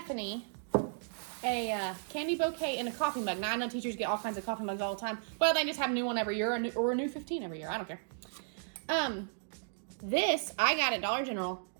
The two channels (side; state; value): left; silent; digital silence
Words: a candy bouquet in a coffee mug. Now I know teachers get all kinds of coffee mugs all the time. Well, they just have a new one every year or a new 15 every year. I don't care. This I got at Dollar General